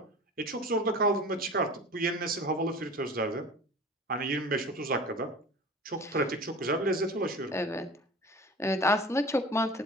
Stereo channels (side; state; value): both; normal; correlation 0.39